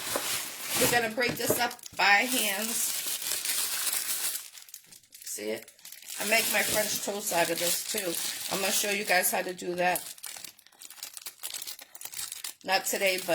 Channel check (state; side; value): identical; both; correlation 1.00